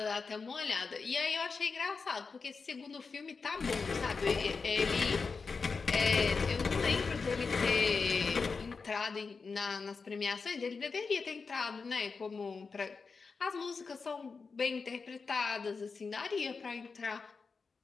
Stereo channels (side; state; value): right; quieter; 4.8 dB